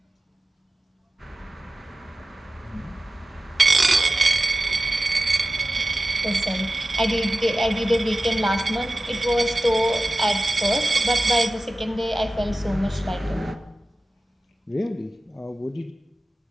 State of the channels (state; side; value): normal; both; correlation 0.95